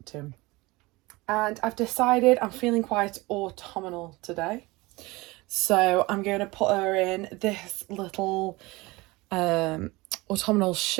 to. And I've decided I'm feeling quite autumnal today, so I'm going to put her in this little autumnal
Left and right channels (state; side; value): quieter; left; 22.3 dB